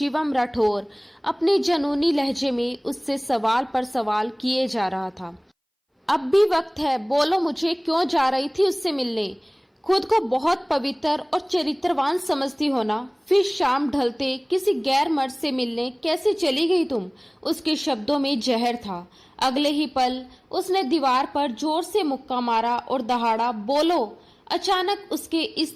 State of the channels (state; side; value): identical; both; correlation 1.00